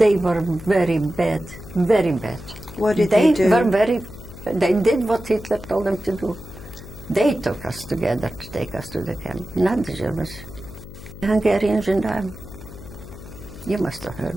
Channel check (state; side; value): noise; left; hum, 15 dB below the sound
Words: were very bad, very bad. What did they do? They did what Hitler told them to do. They took us together to take us to the camp, not the Germans. The Hungarians and you must have heard.